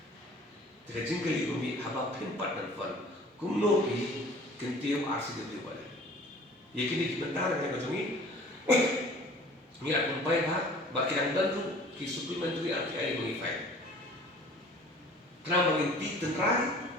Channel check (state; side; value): normal; both; correlation 0.48